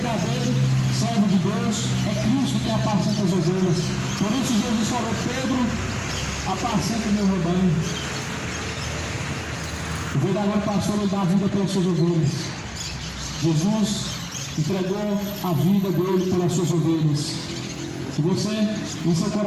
servo de Deus. É Cristo que apacenta as ovelhas. Por isso Jesus falou: Pedro, apacenta o meu rebanho. O verdadeiro pastor, ele dá a vida pelas suas ovelhas. Jesus entregou a vida dele pelas suas ovelhas. Que você, em seu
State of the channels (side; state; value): both; identical; correlation 1.00